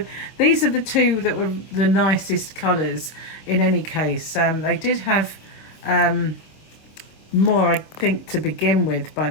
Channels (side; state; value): right; late; 25 ms